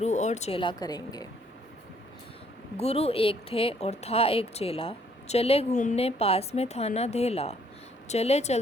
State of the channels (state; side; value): normal; both; correlation 0.65